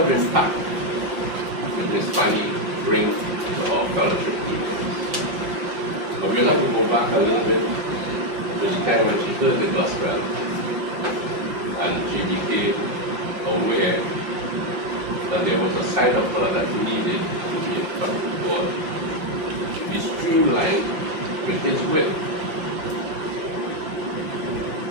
impact did Miss Fanny bring to our fellowship meetings? But we'll have to go back a little bit to the time when she heard the gospel and she became aware that there was a side of her that needed to be in front of God, to be streamlined with His will.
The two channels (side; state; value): left; late; 5.5 ms